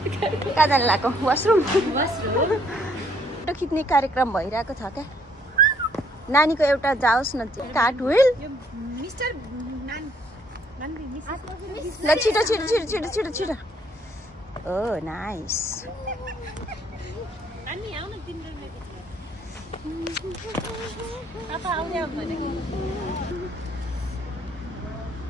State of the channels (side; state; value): both; normal; correlation 0.66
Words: कहाँ जानु लाग्यो? वासरुम। फोटो खिच्ने कार्यक्रम भइरहेको छ क्या। नानीको एउटा जाओस् न कार्ट व्हिल। ल छिटो छिटो छिटो छिटो छिटो छिटो। ओ नाइस।